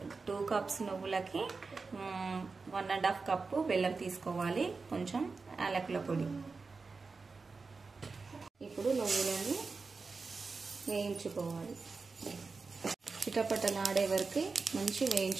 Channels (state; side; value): quieter; left; 4.3 dB